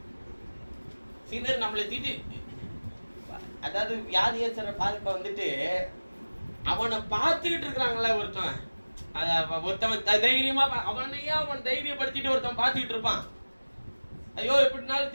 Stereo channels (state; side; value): inverted; both; correlation -1.00